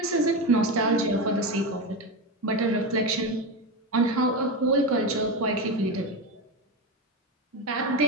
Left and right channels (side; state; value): both; normal; correlation 0.17